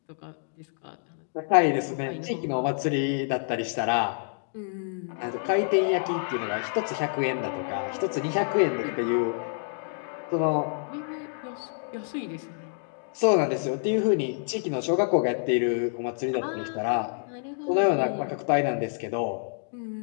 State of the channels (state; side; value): silent; right; digital silence